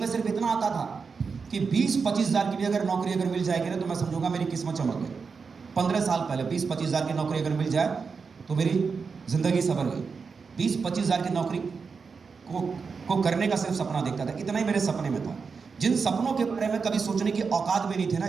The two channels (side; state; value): left; quieter; 5.2 dB